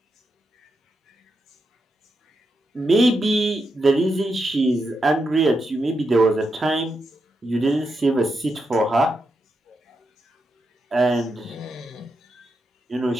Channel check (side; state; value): both; normal; correlation 0.85